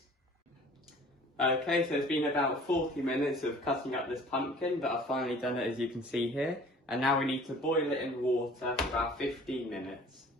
Okay, so it's been about 40 minutes of cutting up this pumpkin, but I've finally done it, as you can see here. And now we need to boil it in water for about 15 minutes.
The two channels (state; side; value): normal; both; correlation 0.48